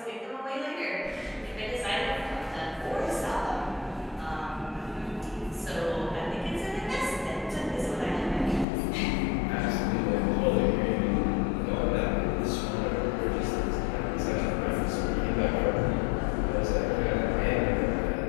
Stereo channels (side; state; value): right; drops out; at 8.7 s